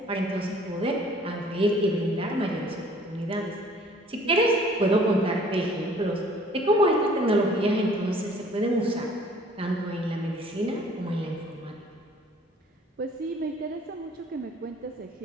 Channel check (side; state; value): both; normal; correlation 0.55